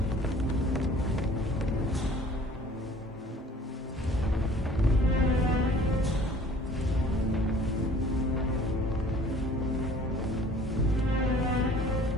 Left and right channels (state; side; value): normal; both; correlation 0.51